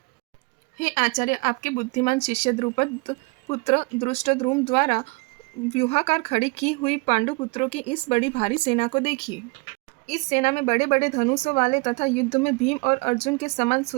हे आचार्य, आपके बुद्धिमान शिष्य द्रुपद पुत्र धृष्टद्युम्न द्वारा व्यूहाकार खड़ी की हुई पांडु पुत्रों की इस बड़ी भारी सेना को देखिए। इस सेना में बड़े बड़े धनुषों वाले तथा युद्ध में भीम और अर्जुन के समान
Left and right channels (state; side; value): quieter; left; 29.4 dB